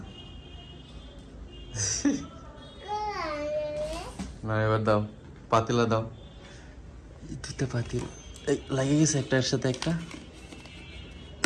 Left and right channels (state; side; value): identical; both; correlation 1.00